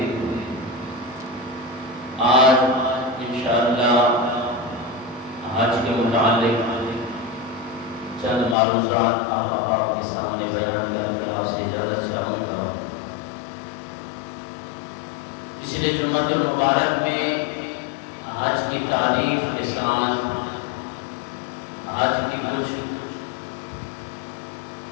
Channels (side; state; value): right; drops out; at 8.6 s